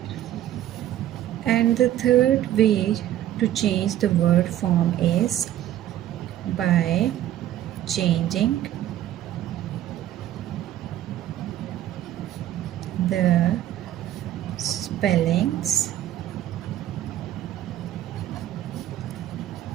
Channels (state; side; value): quieter; left; 12.5 dB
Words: And the third way to change the word form is by changing the spellings